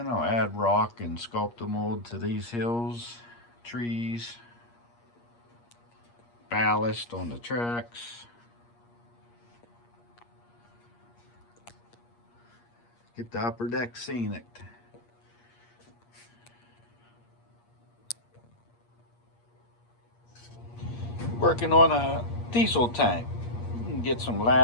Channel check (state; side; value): late; right; 8.5 ms